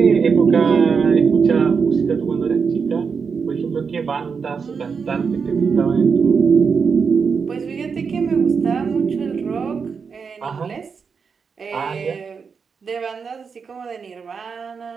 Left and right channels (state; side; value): quieter; left; 5.7 dB